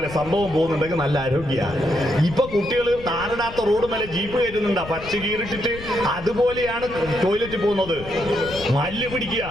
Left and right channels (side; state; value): left; noise; rumble, 14 dB below the sound